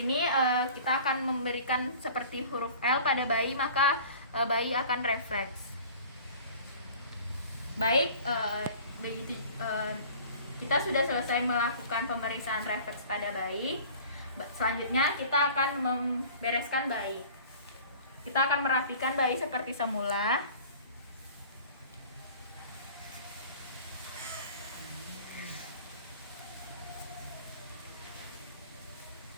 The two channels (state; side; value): inverted; both; correlation -0.45